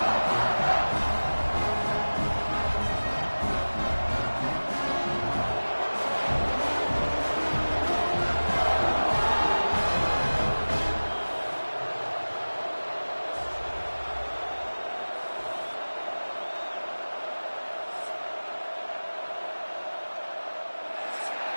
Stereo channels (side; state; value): both; inverted; correlation -1.00